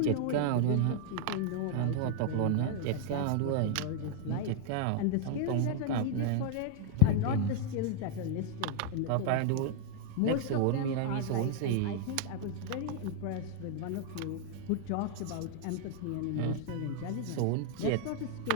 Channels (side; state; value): both; different; correlation 0.00